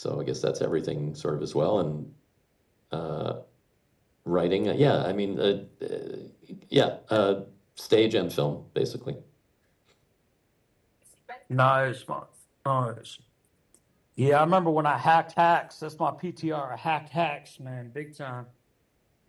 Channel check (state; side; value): identical; both; correlation 1.00